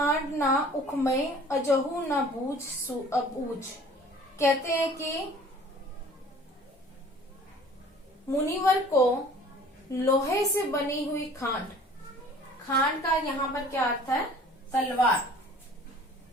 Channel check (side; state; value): both; normal; correlation 0.49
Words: ना उखमय अजहू ना बूझ अबूझ। कहते हैं कि मुनिवर को लोहे से बनी हुई खांड, खांड का यहाँ पर क्या अर्थ है? तलवार,